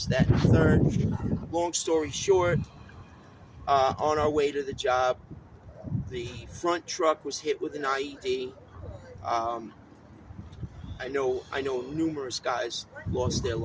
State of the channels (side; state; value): both; identical; correlation 1.00